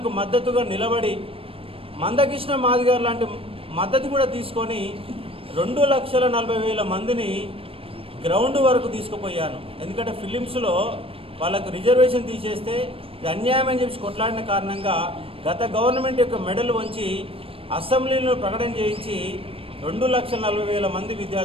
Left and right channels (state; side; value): late; left; 0.27 ms